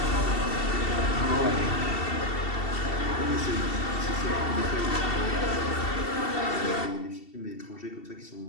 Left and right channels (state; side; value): late; right; 2.7 ms